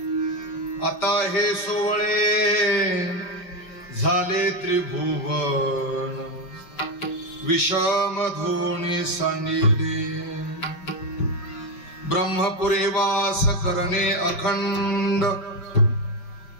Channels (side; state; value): right; late; 5.5 ms